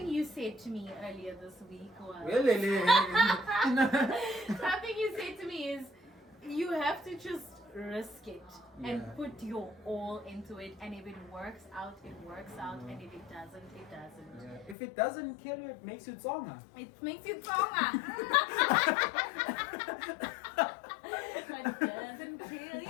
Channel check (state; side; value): drops out; right; at 14.8 s